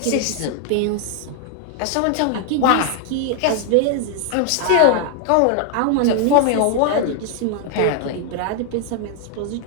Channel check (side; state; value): both; different; correlation 0.00